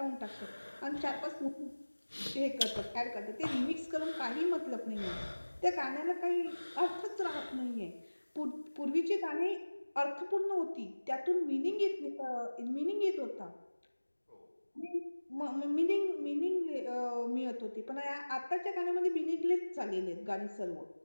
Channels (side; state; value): both; inverted; correlation -1.00